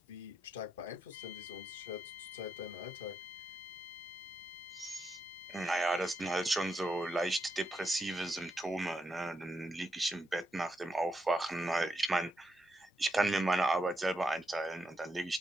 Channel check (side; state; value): both; normal; correlation 0.83